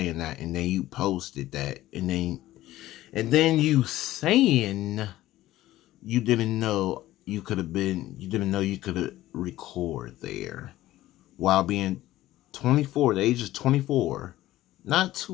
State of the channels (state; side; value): quieter; right; 15.4 dB